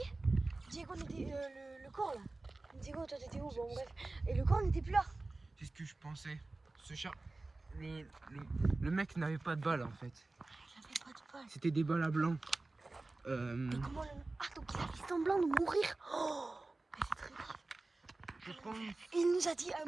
Diego n'était... le corps, là. Diego, toi, t'étais où? Bon, bref. Et le corps n'était plus là. C'est ce que je pensais. Ce chat... Le mec n'avait pas de balles, en fait. Il avait pas de balles. C'était des balles à blanc. Mais comment le... Ah, donc il a fait semblant de mourir. Oh, mais c'est très grave. Je pense... Et il nous a dit un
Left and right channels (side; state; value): left; quieter; 3.2 dB